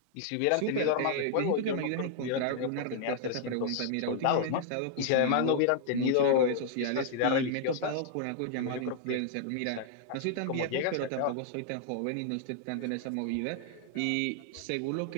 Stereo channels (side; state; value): both; different; correlation 0.00